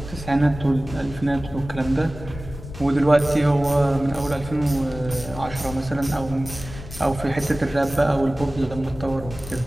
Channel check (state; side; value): noise; left; rumble, 13 dB below the sound